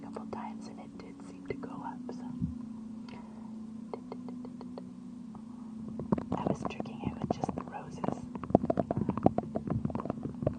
couple times and it did seem to go up, so. I was tricking it with just the roses.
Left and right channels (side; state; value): both; identical; correlation 1.00